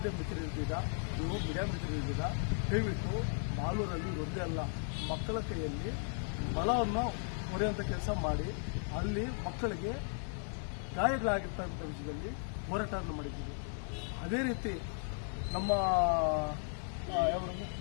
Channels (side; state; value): right; silent; 54 dB below the other